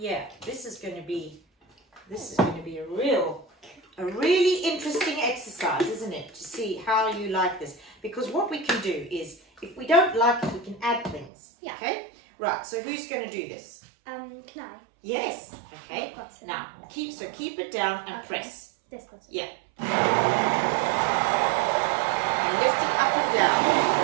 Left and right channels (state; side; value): drops out; left; at 11.3 s